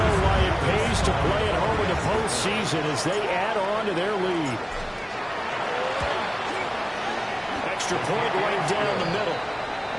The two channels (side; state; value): both; identical; correlation 1.00